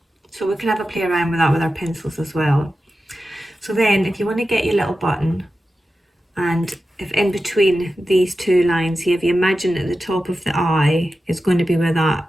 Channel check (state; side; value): normal; both; correlation 0.93